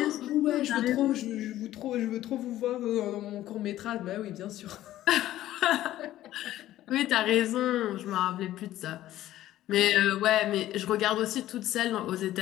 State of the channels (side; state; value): right; quieter; 14.0 dB